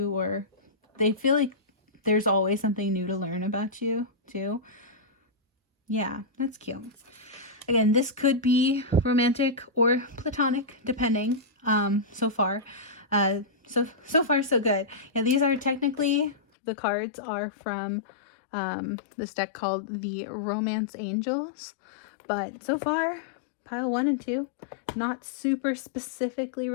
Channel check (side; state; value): right; drops out; at 16.4 s